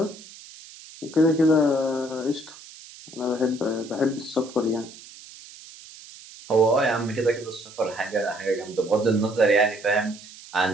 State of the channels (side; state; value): right; noise; hiss, 18 dB below the sound